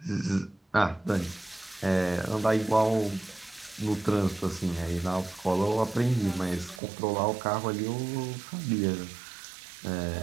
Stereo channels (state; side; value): drops out; left; at 6.8 s